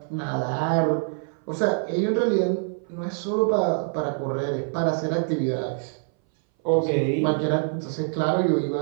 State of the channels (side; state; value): left; silent; 60 dB below the other